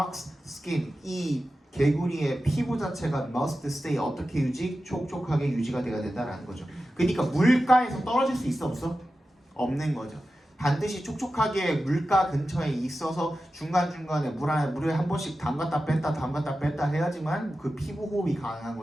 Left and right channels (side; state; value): both; normal; correlation 0.93